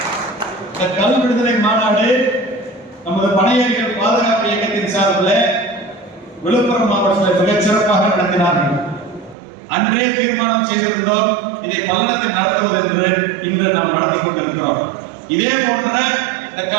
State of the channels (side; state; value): left; drops out; at 9.3 s